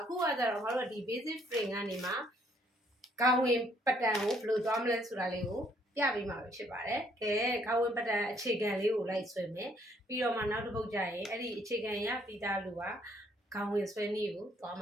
ခုကကြတော့ငါတို့ကဒီ basic frame ကနေမှကောင်းဝင်ပတန်ကိုဘယ်လိုသွားမလဲဆိုတာလေးကိုပြပေးမှာဖြစ်ပါတယ်။ကဲကောင်းဝင်ပတန်အခြေခံလေးကိုလိုက်ဆွဲမယ်။ပြီးတော့မှနောက်တစ်ပုတ်ကျရင်အဲ့ဒီအခြေခံရပြီးသားလူကကောင်းဝင်ဆွဲနည်းကိုသွားမ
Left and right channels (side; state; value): both; normal; correlation 0.66